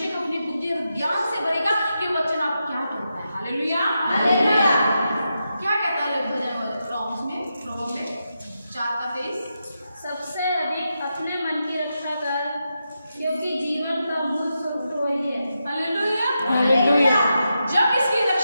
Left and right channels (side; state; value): both; inverted; correlation -0.87